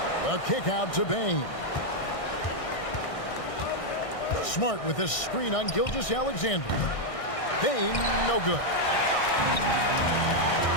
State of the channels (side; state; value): right; late; 1.6 ms